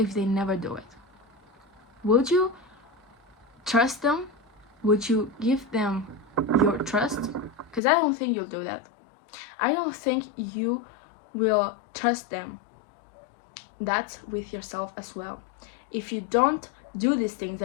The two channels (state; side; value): drops out; right; at 7.8 s